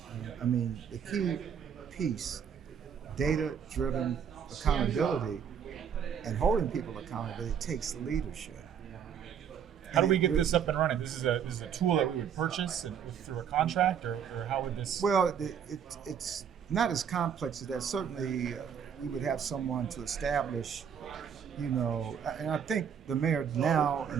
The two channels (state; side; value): quieter; left; 7.9 dB